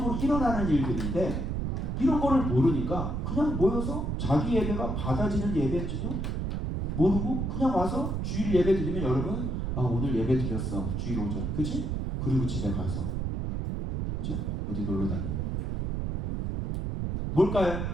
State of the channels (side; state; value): right; noise; rumble, 1 dB below the sound